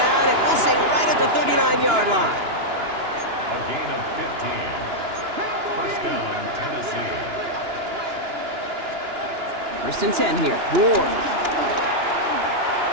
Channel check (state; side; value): late; left; 2.9 ms